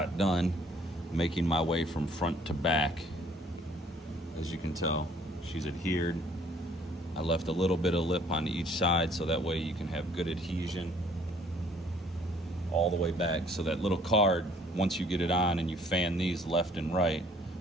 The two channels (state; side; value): normal; both; correlation 0.59